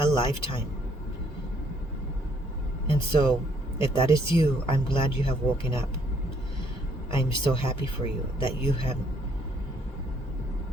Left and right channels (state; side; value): normal; both; correlation 0.67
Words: lifetime. And so, if that is you, I'm glad you have woken up. I'm so happy for you that you have